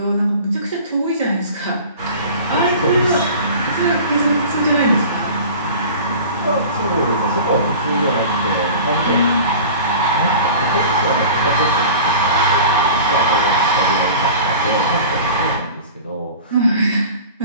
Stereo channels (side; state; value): both; inverted; correlation -0.39